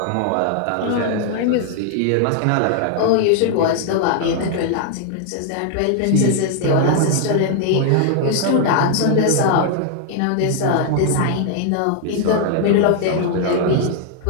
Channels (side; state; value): both; different; correlation 0.00